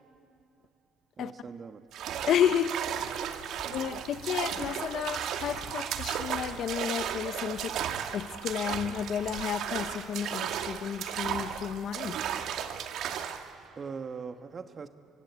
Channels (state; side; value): normal; both; correlation 0.55